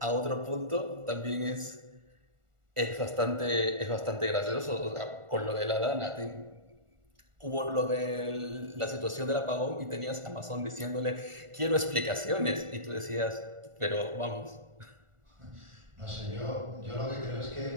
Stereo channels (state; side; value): late; left; 1.4 ms